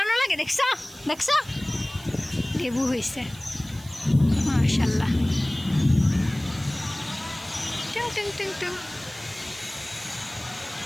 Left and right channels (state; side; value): noise; right; hiss, 20 dB below the sound